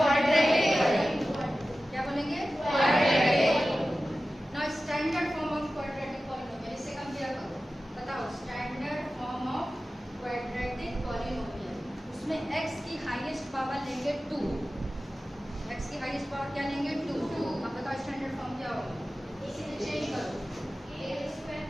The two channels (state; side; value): normal; both; correlation 0.95